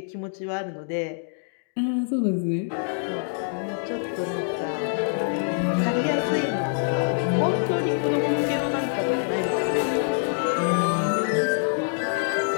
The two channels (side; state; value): right; silent; digital silence